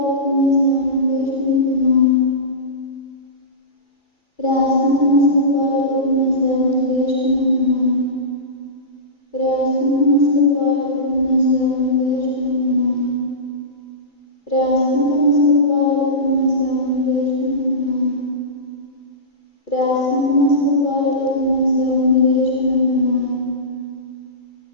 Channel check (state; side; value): late; right; 2.3 ms